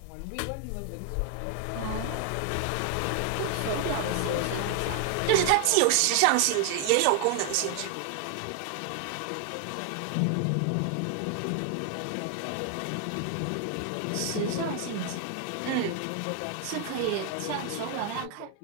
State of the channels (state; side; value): different; both; correlation 0.00